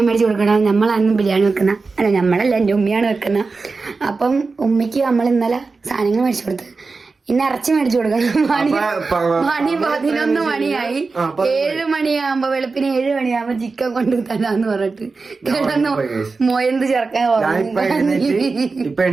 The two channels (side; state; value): left; quieter; 4.2 dB